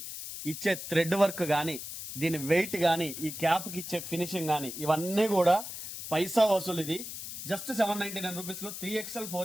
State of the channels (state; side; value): noise; left; hiss, 9 dB below the sound